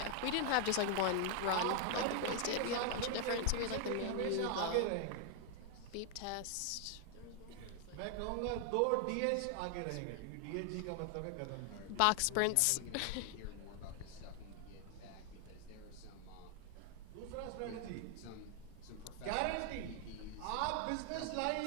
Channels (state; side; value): different; both; correlation 0.00